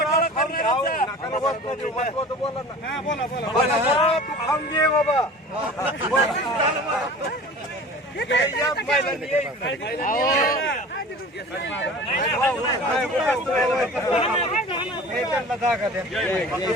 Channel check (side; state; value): both; normal; correlation 0.40